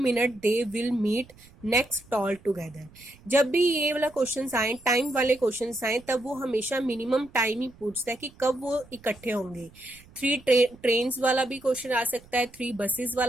they will meet next toll together। जब भी ये वाला क्वेश्चन आए, टाइम वाले क्वेश्चन आए, तब वो हमेशा मिनिमम टाइम ही पूछता है कि कब वो इकट्ठे होंगे। 3 ट्रेन्स वाला भी क्वेश्चन आ सकता है, 3 बसेस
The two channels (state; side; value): noise; right; rumble, 24 dB below the sound